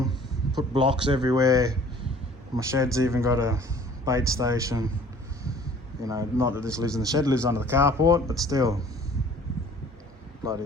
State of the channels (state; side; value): normal; both; correlation 0.51